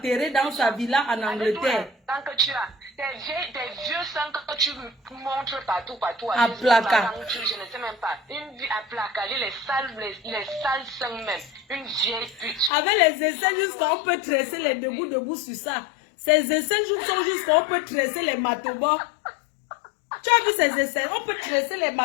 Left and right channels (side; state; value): right; drops out; at 12.7 s